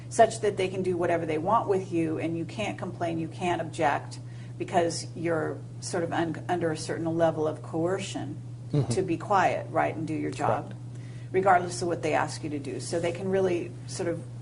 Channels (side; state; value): both; identical; correlation 1.00